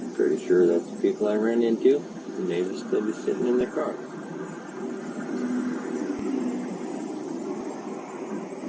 Pretty sure that's the people I ran into, and they would still be sitting in their car.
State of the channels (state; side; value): identical; both; correlation 1.00